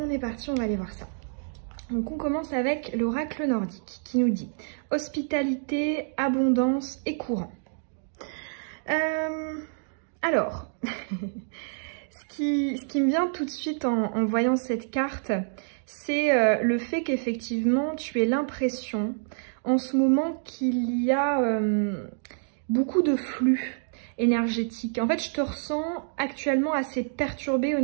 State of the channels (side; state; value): left; silent; digital silence